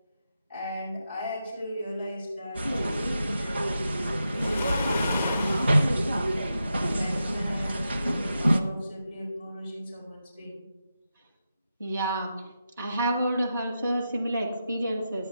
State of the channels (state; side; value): inverted; both; correlation -0.88